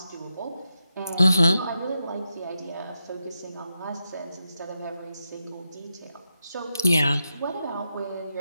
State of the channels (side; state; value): both; inverted; correlation -0.87